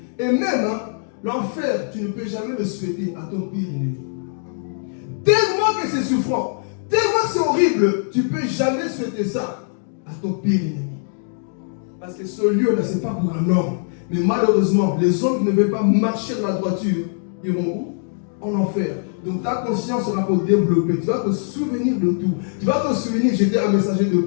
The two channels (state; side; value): silent; right; digital silence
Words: Et même, hein, l'enfer, tu ne peux jamais le souhaiter à ton pire ennemi. Tellement que c'est souffrant, tellement que c'est horrible, tu ne peux jamais souhaiter ça à ton pire ennemi. Parce que ce lieu-là, ce n'est pas pour un homme. Mais malheureusement, les hommes qui ne veulent pas marcher dans la droiture, iront où? En enfer. Donc ta conscience sera pour développer. Tu vas te souvenir de tout. Tu vas te souvenir que j'étais un messager de